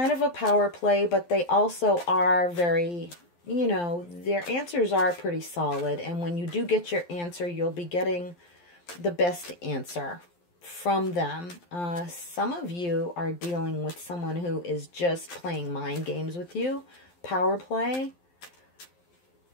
of a power play, but they also are very, their answers are pretty solid. And when you do get your answer, you'll be getting the best answer from them. Some of you are dealing with someone who is just playing mind games with you. Power play.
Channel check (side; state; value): right; late; 12 ms